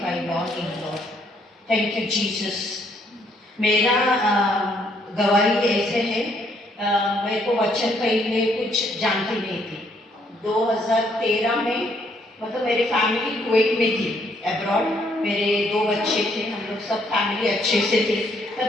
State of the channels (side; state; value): both; normal; correlation 0.69